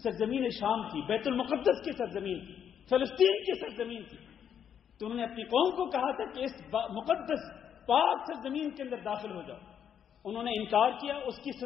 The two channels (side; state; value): right; quieter; 8.6 dB